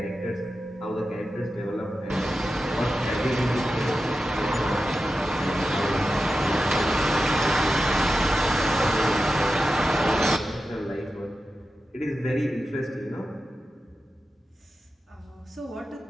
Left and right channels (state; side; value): normal; both; correlation 0.92